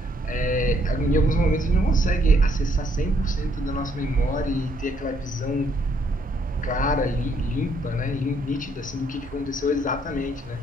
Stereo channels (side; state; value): both; normal; correlation 0.69